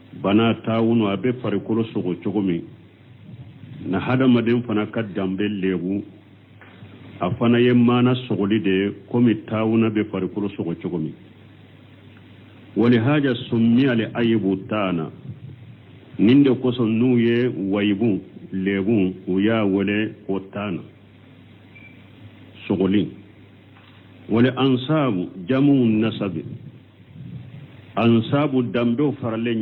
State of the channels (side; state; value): both; identical; correlation 1.00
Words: بنا تاونو أبي فريكولو سوغو تشوغمي na hada madin fana ka dambe lebu afana yemana sogoli de komi tawuna be farikulu sogo chogomi wali haja summi ali ayibu tana ninde koso nuye waibu lebu uya wale otana sogoli والأنصاب جمع النسب أنصاب الدمدو فرلين